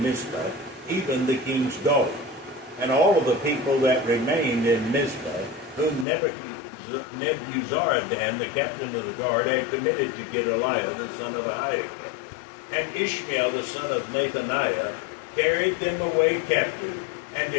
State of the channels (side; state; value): right; drops out; at 6.1 s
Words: Mizpah, even the king's daughter, and all of the people that remained in Mizpah, whom Nebuzaradan, the captain of the guard, had committed to Gedaliah, the son of Ahikam. And Ishmael, the son of Nethaniah, carried them away captive, and